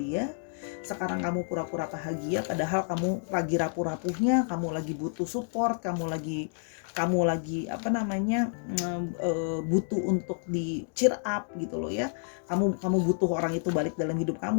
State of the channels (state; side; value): silent; right; 58 dB below the other